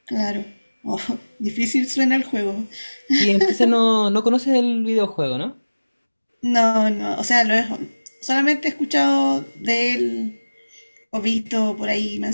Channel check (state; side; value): inverted; both; correlation -1.00